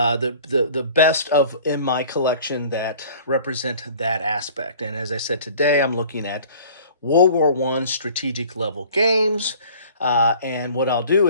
best of in my collection that represent that aspect. And as I said today, I'm looking at World War One strategic level games. And what I'll do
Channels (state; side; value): inverted; both; correlation -0.48